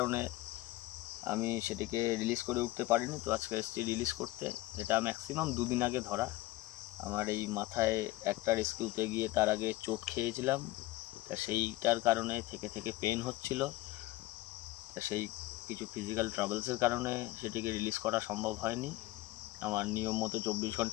আমি সেটিকে রিলিজ করে উঠতে পারিনি। তো আজকে এসেছি রিলিজ করতে। এটা ম্যাক্সিমাম 2 দিন আগে ধরা। আমার এই মাথায় একটা রেস্কিউতে গিয়ে তার আগে চোট খেয়েছিলাম, তা সেইটার কারণে থেকে পেন হচ্ছিল। তা সেই কিছু ফিজিক্যাল ট্রাবলসের কারণে সেটিকে রিলিজ করা সম্ভব হয়নি আমার নিয়ম মতো 24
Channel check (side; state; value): right; quieter; 18.7 dB